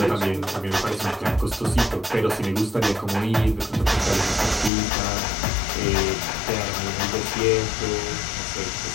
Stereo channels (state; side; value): drops out; right; at 4.7 s